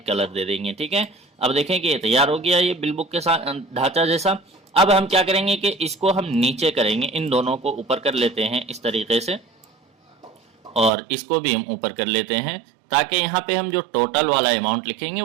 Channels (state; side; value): drops out; left; at 10.9 s